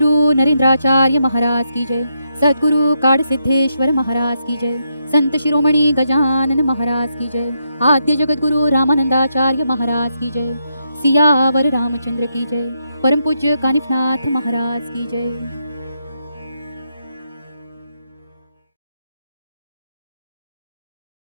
नरेंद्राचार्य महाराज की जय। सद्गुरु काड़ सिद्धेश्वर महाराज की जय। संत शिरोमणि गजानन महाराज की जय। आद्य जगत गुरु रामानंदाचार्य महाराज की जय। सियावर रामचंद्र की जय। परम पूज्य कानिफनाथ महाराज की जय।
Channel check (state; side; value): inverted; both; correlation -0.81